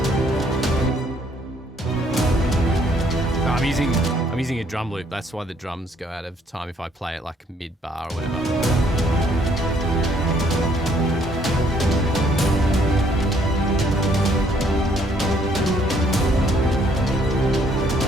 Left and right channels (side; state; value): both; normal; correlation 0.66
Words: I'm using a drum loop. That's why the drums go out of time if I play it like mid bar or whatever.